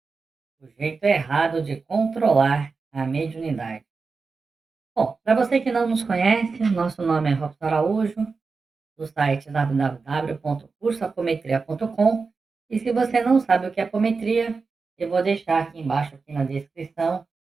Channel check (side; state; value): left; quieter; 4.5 dB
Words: O jeito errado de controlar a mediunidade. Bom, para você que não nos conhece, nosso nome é Robson Araújo, do site www.cursoapometria.com. E se você não sabe o que é apometria, eu vou deixar aqui embaixo, aqui na descrição,